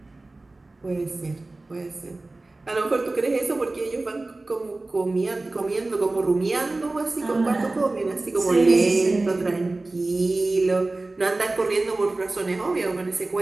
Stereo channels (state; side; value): quieter; left; 3.1 dB